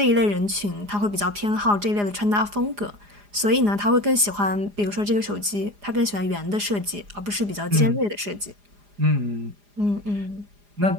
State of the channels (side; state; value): left; late; 4.9 ms